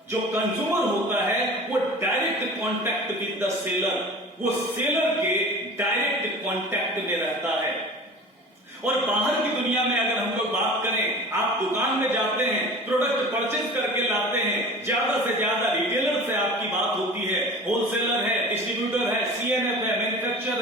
जो कंज्यूमर होता है वो direct contact with the seller, वो सेलर के डायरेक्ट कांटेक्ट में रहता है। और बाहर की दुनिया में अगर हम लोग बात करें, आप दुकान में जाते हैं, प्रोडक्ट परचेज करके लाते हैं, ज्यादा से ज्यादा रिटेलर से आपकी बात होती है, होलसेलर है, डिस्ट्रीब्यूटर है, सीएनएफ है,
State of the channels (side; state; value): both; normal; correlation 0.39